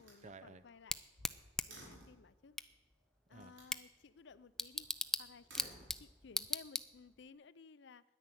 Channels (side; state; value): both; normal; correlation 0.35